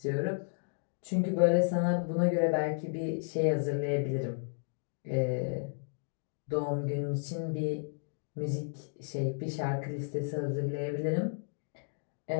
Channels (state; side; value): silent; right; digital silence